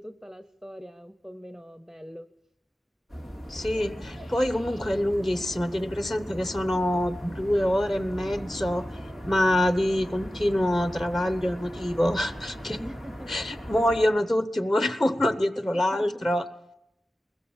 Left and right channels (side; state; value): both; normal; correlation 0.94